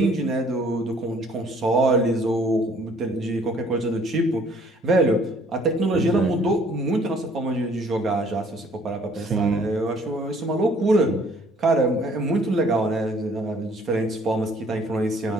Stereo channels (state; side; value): normal; both; correlation 0.59